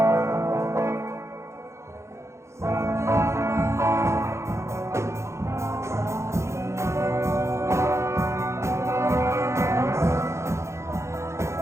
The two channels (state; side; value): late; left; 0.14 ms